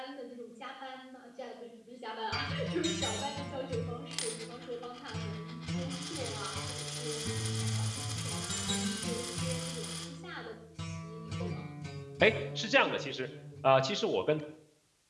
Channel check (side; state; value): both; identical; correlation 1.00